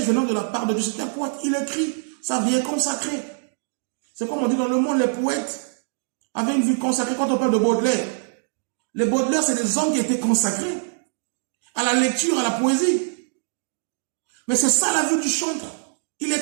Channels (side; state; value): left; silent; digital silence